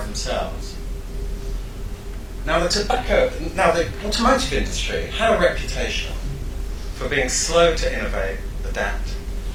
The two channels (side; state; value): both; identical; correlation 1.00